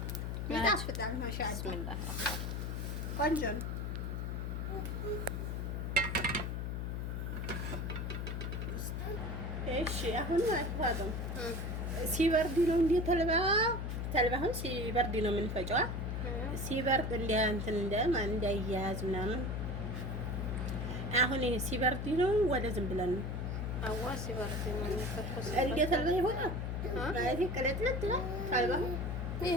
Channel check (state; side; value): noise; left; hum, 3 dB below the sound